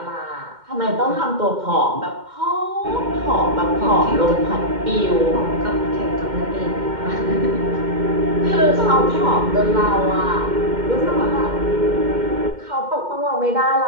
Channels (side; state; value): left; late; 2.1 ms